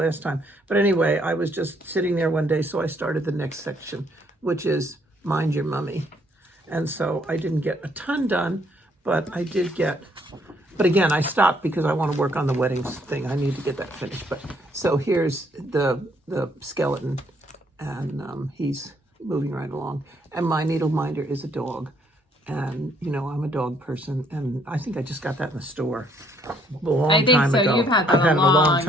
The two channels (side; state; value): both; normal; correlation 0.67